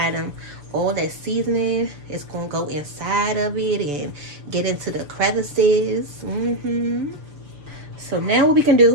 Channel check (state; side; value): late; left; 6.9 ms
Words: them, all that seasoning is going to go inside of it and get into the crevices. So now what we can